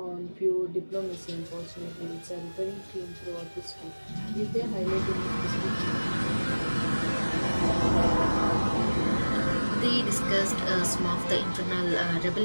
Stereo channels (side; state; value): both; inverted; correlation -1.00